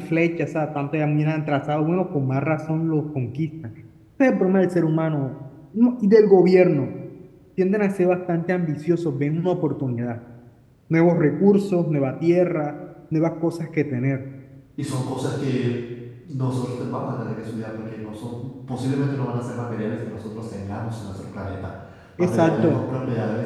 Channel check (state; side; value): identical; both; correlation 1.00